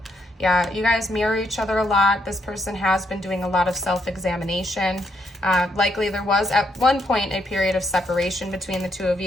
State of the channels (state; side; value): normal; both; correlation 0.76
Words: Yeah, you guys mirror each other a lot. This person has been doing a lot of self-examination. Likely there was at one point a period of separation between the two of